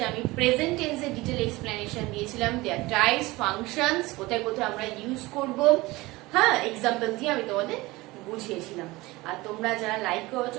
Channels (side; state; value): left; quieter; 20.8 dB